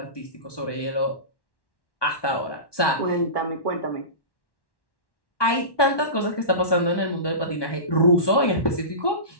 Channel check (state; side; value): late; right; 1.2 ms